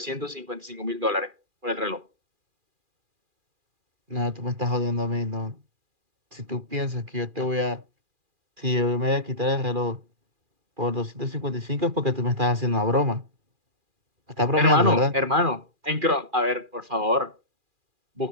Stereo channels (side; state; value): left; late; 2.4 ms